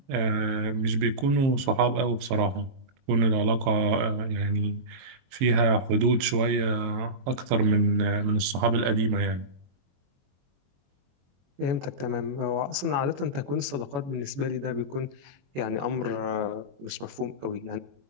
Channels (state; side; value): late; left; 22 ms